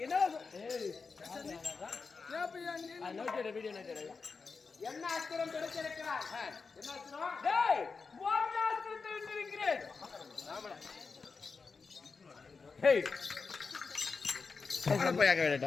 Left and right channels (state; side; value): quieter; right; 4.7 dB